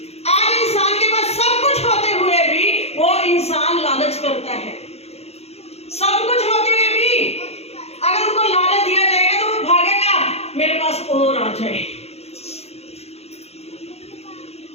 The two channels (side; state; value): right; late; 0.30 ms